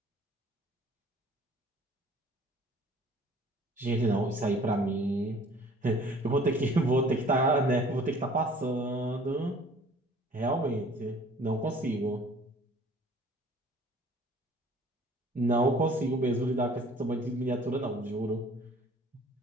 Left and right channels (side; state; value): both; normal; correlation 0.52